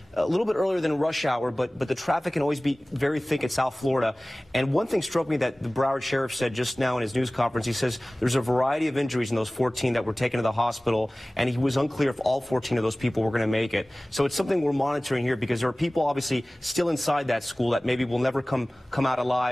a little bit earlier than rush hour, but the traffic can always be very thick in South Florida. And one thing struck me that the Broward Sheriff said just now in his news conference. He says there's a variety of injuries in those 14 that were taken to the hospital, and he was unclear if all 14 of those people were going to make it. So it's something we're monitoring here, because there are people obviously still inside that school that maybe will never come out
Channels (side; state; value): both; normal; correlation 0.98